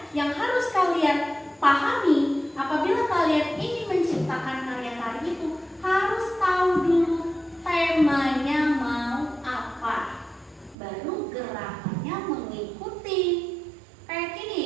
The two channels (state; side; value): drops out; left; at 10.8 s